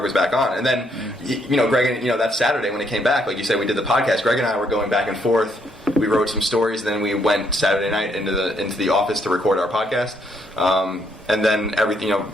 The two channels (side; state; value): both; normal; correlation 0.72